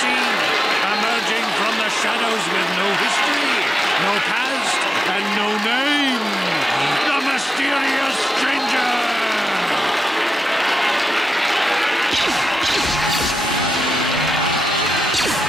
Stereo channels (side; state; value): both; normal; correlation 0.90